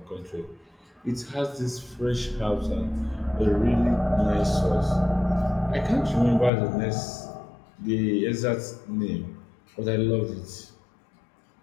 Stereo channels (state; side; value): drops out; right; at 6.5 s